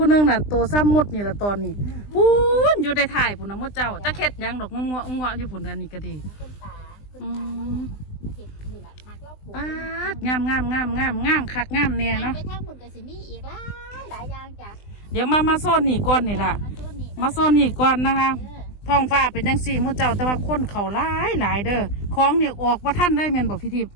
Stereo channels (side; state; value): right; late; 20 ms